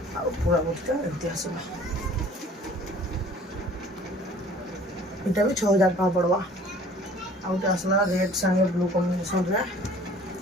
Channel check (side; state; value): both; normal; correlation 0.50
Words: पूरा बॉडीटा एमती आसवा। इटा भी 6000 टका पड़वा। आउटे आसला रेड संगे ब्लू कॉम्बिनेशन रे